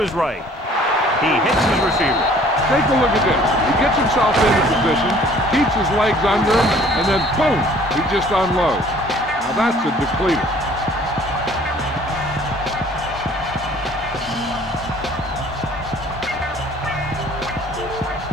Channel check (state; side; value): normal; both; correlation 0.54